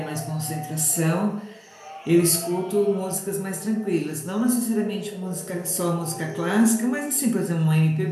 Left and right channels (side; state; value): both; identical; correlation 1.00